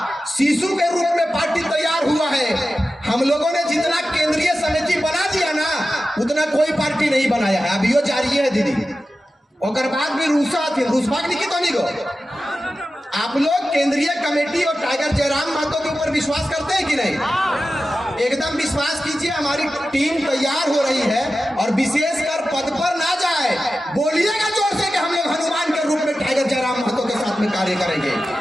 शिशु के रूप में पार्टी तैयार हुआ है। हम लोगों ने जितना केंद्रीय समिति बना दिया ना, उतना कोई पार्टी नहीं बनाया है, अभी वो जारी है दीदी, और बाद भी रूसा थे, रूसबाग नहीं तो नहीं गो। आप लोग केंद्रीय कमेटी और टाइगर जयराम महतो के ऊपर विश्वास करते हैं कि नहीं? एकदम विश्वास कीजिए, हमारी टीम तैयार हो रही है और विशेषकर पद पर ना जाए, बोलिएगा जोर से कि हम लोग हनुमान के रूप में टाइगर जयराम महतो के साथ में कार्य करेंगे।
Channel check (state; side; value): normal; both; correlation 0.93